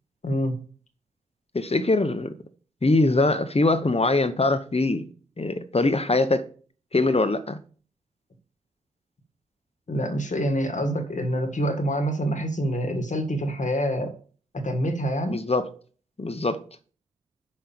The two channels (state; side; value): normal; both; correlation 0.65